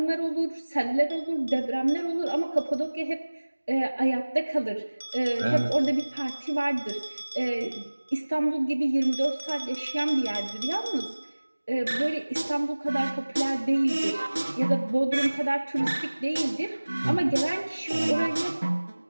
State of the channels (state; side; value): inverted; both; correlation -1.00